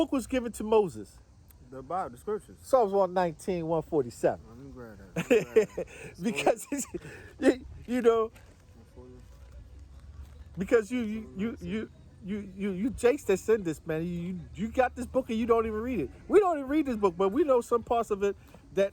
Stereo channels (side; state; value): both; identical; correlation 1.00